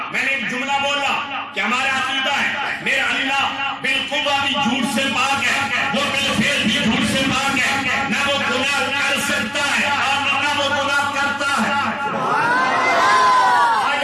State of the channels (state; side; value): identical; both; correlation 1.00